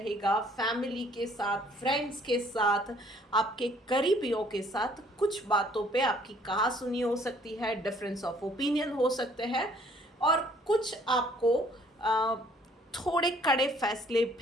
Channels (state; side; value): normal; both; correlation 0.60